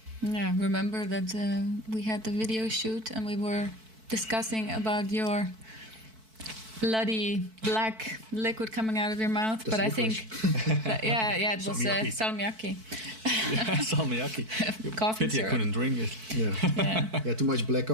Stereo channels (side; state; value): left; late; 4.5 ms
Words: Yeah, remember that we had the video shoot and we were discussing about your bloody black liquid coming out of your mouth. That's but I think, licorice. it was Salmiakki. salmiakki. Salmiakki. Coffee Pity I syrup. couldn't drink it. Yeah, too much black